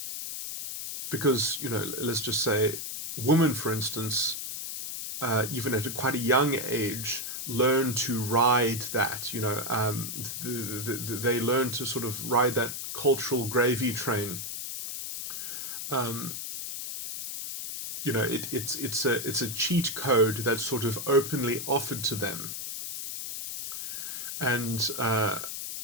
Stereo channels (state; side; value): noise; left; hiss, 6 dB below the sound